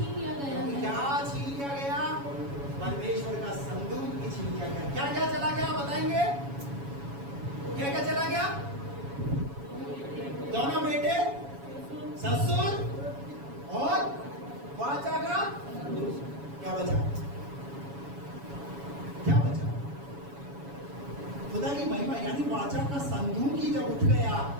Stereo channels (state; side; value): late; left; 7.2 ms